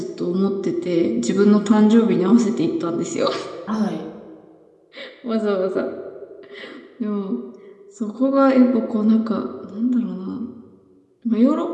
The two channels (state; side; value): identical; both; correlation 1.00